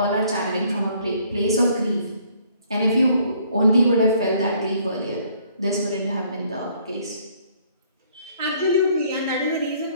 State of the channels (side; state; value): both; inverted; correlation -0.62